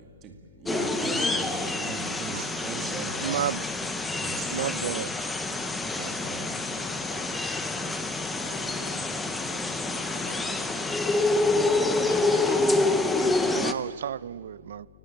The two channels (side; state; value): left; noise; hum, 26 dB below the sound